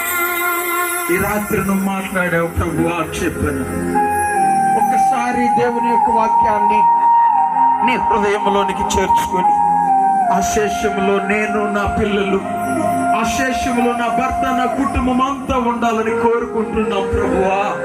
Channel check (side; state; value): both; identical; correlation 1.00